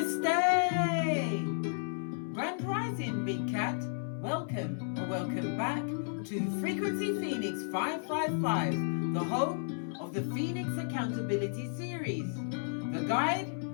Grand Rising, Big Cat. Welcome or welcome back to Frequency Phoenix 555, the home of the Phoenix Accountability Series. The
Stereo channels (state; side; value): silent; right; 56 dB below the other